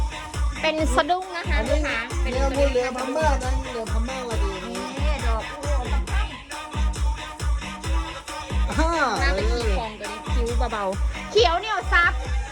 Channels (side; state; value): both; identical; correlation 1.00